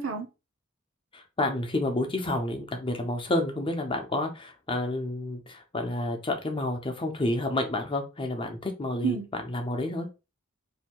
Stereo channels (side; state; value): both; normal; correlation 0.49